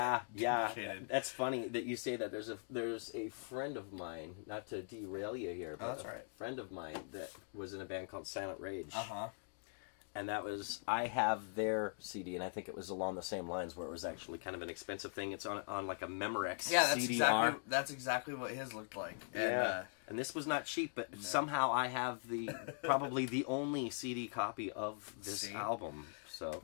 That's funny that you say that. There's a friend of mine, not to derail you here, but that's right. A friend of mine that was in a band called Silent Rage. And that was, I have their CD, and I think it was along the same lines where it was actually kind of an expensive thing. It's on like a Memorex CDR. That's exactly what his looked like. Yeah. And this was not cheap, but somehow I have probably the only CD copy of this album. So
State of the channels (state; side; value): silent; right; digital silence